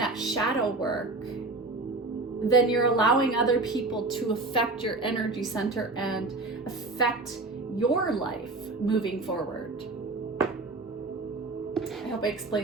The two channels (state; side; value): quieter; left; 3.3 dB